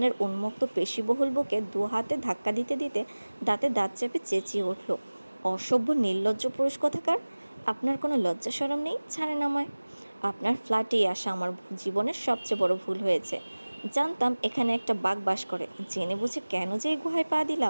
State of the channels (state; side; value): inverted; both; correlation -1.00